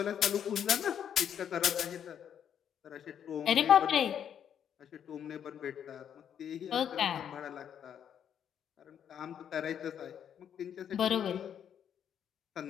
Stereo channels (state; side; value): quieter; right; 8.9 dB